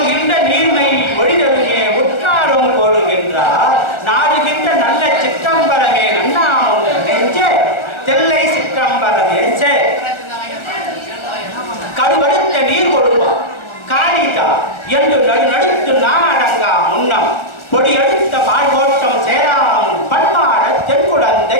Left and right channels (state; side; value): late; right; 1.4 ms